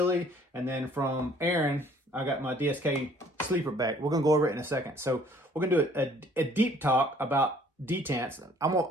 And then from Aaron, I got my DSK sleeper back. We're gonna go over it in a second. So we're gonna do a deep talk about detents. I'm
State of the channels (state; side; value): normal; both; correlation 0.57